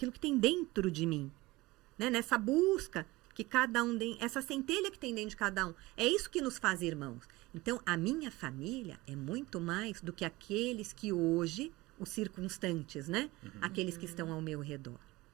que tem dentro de mim. Né? Nessa busca que cada um tem, essa centelha que tem dentro de cada um. É isso que nos faz irmãos. Então, a minha família é muito mais do que aqueles que hoje, os circunstantes, né? Aqueles que estão ao meu redor.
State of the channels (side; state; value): left; quieter; 20.6 dB